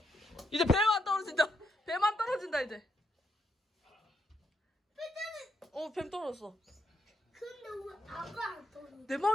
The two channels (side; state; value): both; normal; correlation 0.79